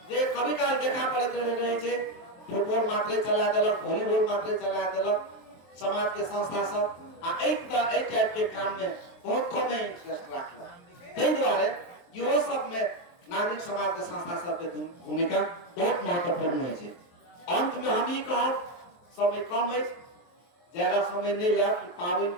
जे कभी काल देखा पड़ैत रहे छै फुटबॉल मात्रे चला देलक, वॉलीबॉल मात्रे चला देलक समाज के संस्था सब आ एहि टाइप के काम में बहुत कम इंटरेस्ट राखलक। ताहि द्वारे इहो सब में नागरिक समाज के संस्था सब के भूमिका बहुत महत्वपूर्ण है। अंत में हम ई कहब, समय कम है, ज्यादा समय नहीं लिया, पावन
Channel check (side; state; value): right; late; 23 ms